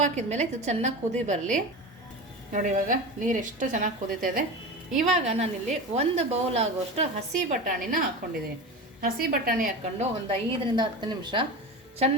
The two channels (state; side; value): normal; both; correlation 0.27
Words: ಹಾಕಿದ್ಮೇಲೆ ಇದು ಚೆನ್ನಾಗಿ ಕುದಿ ಬರಲಿ. ನೋಡಿ, ಇವಾಗ ನೀರು ಎಷ್ಟು ಚೆನ್ನಾಗಿ ಕುದೀತಾ ಇದೆ. ಇವಾಗ ನಾನಿಲ್ಲಿ 1 ಬೌಲ್ ಆಗುವಷ್ಟು ಹಸಿ ಬಟಾಣಿನ ಹಾಕ್ಕೊಂಡಿದ್ದೀನಿ. ಹಸಿ ಬಟಾಣಿ ಹಾಕ್ಕೊಂಡು ಒಂದು 5ರಿಂದ 10 ನಿಮಿಷ